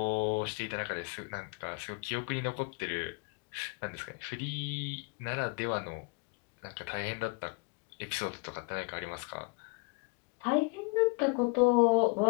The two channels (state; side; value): quieter; right; 31.1 dB